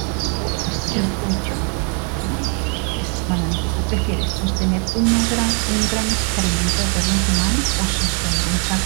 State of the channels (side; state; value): left; quieter; 38.8 dB